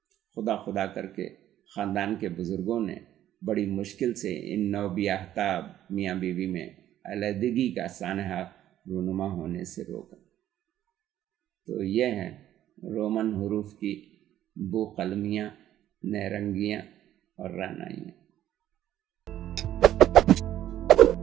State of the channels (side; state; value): left; quieter; 12.2 dB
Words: خدا خدا کر کے خاندان کے بزرگوں نے بڑی مشکل سے ان نو بیاہتا میاں بیوی میں علیحدگی کا سانحہ رونما ہونے سے روکا۔ تو یہ ہیں رومن حروف کی بو قلمیاں، نیرنگیاں اور رعنائیاں۔